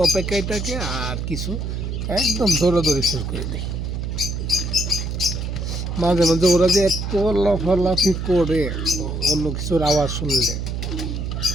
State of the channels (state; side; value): noise; right; hum, 3 dB below the sound